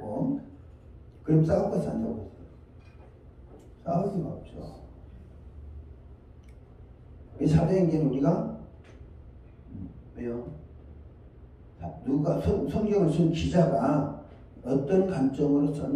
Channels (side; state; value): both; identical; correlation 1.00